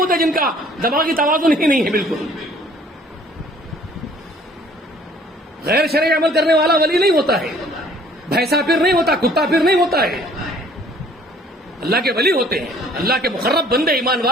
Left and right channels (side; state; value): both; normal; correlation 0.56